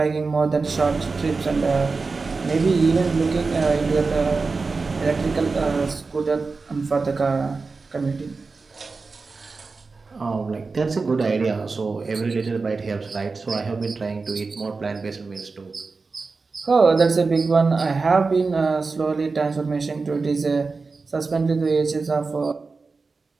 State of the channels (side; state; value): left; quieter; 4.2 dB